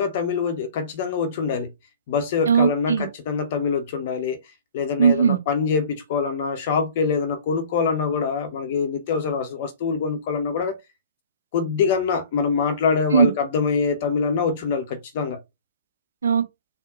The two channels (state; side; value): inverted; both; correlation -0.47